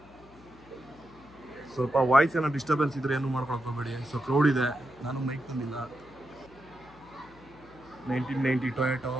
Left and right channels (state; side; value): noise; left; hum, 24 dB below the sound